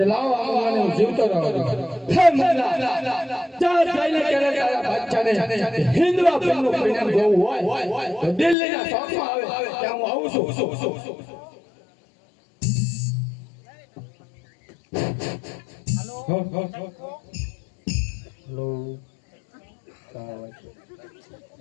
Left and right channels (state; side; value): drops out; right; at 8.6 s